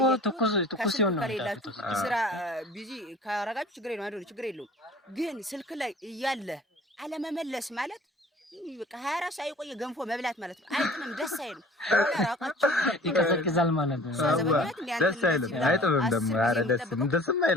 ትኩስ ይሆናል። ስራ ቢዚ ካረጋችሁ ችግር የለውም። ግን ስልክ ላይ እያለ አለመመለስ ማለት በቃ 24 ሰዓት የቆየ ገንፎ መብላት ማለት ነው። አይጥምም፣ ደስ አይልም። ራቃችሁ ይቀዘቅዛል ማለት ነው። ደስ አይልም፣ አይጥምም ደግሞ ኧረ ደስም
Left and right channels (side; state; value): both; normal; correlation 0.47